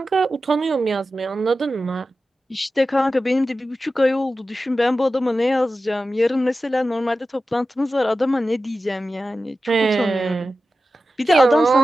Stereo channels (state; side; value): normal; both; correlation 0.93